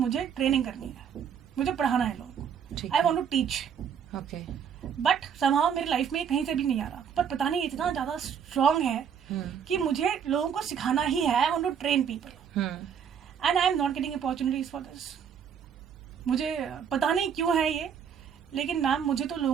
ट्रेनिंग करनी है, मुझे पढ़ाना है लोगों को, I want to teach. Okay. But somehow मेरी लाइफ में कहीं से भी नहीं आ रहा, पर पता नहीं इतना ज़्यादा स्ट्रॉन्ग है कि मुझे लोगों को सिखाना ही है. I want to train people and I am not getting opportunities for this. मुझे पता नहीं क्यों है ये, लेकिन मैम मुझे तो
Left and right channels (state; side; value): quieter; left; 7.8 dB